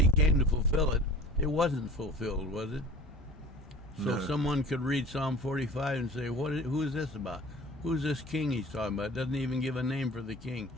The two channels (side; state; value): both; normal; correlation 0.43